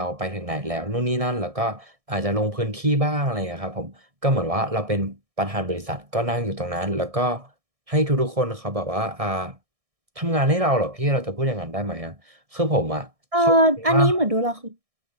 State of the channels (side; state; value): left; late; 1.6 ms